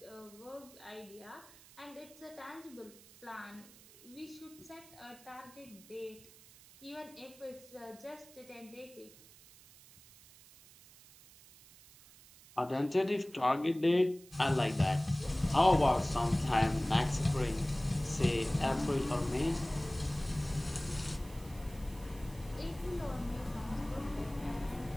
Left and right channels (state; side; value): noise; right; hiss, 22 dB below the sound